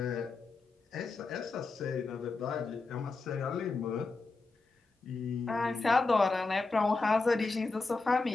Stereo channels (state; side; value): quieter; right; 3.8 dB